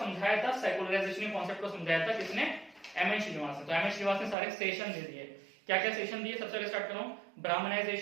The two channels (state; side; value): drops out; left; at 4.4 s